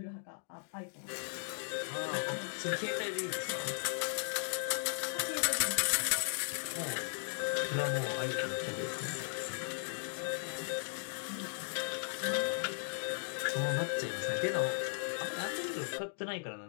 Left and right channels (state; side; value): silent; right; digital silence